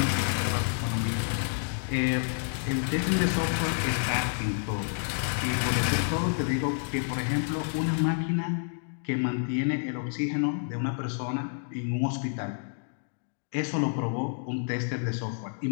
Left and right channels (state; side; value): silent; right; digital silence